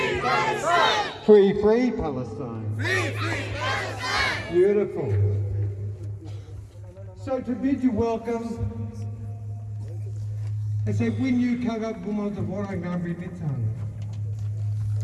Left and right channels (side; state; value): both; identical; correlation 1.00